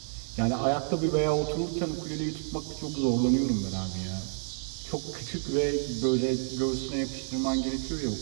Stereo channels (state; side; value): silent; left; digital silence